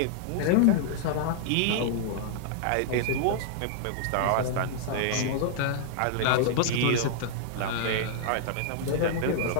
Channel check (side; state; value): both; different; correlation -0.01